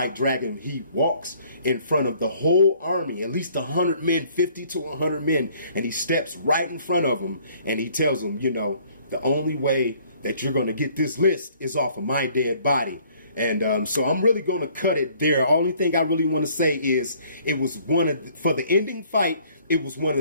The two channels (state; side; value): inverted; both; correlation -0.59